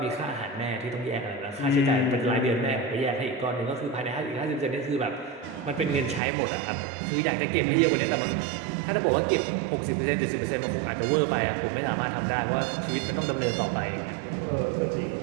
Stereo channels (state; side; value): drops out; left; at 6.2 s